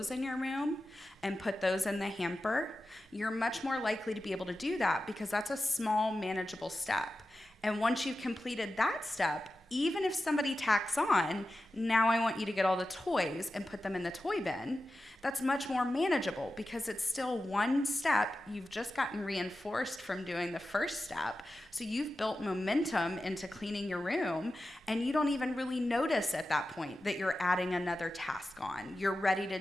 in your room and put those in the hamper, you're much more likely to be able to do that because that's a small, manageable step. And once you've completed that step, even if somebody tacks on, now I want you to get all the toys and put them in the toy bin, that's much more manageable because it's still one step. You've just gotten reinforced from doing the first step. So you've built momentum into cleaning your room, and you don't even really notice at that point that you're adding another task on. You're ready to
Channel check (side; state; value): both; normal; correlation 0.93